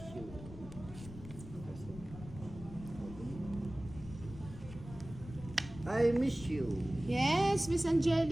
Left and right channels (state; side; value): noise; left; rumble, 14 dB below the sound